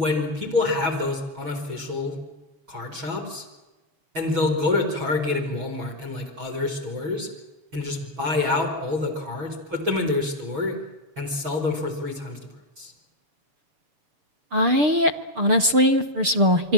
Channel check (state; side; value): late; left; 6.7 ms